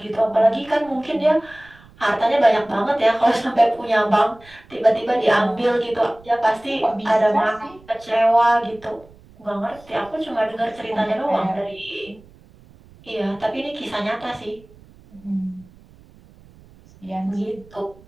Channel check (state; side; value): noise; right; rumble, 25 dB below the sound